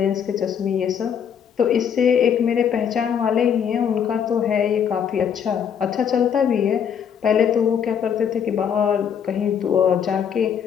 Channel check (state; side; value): quieter; right; 7.9 dB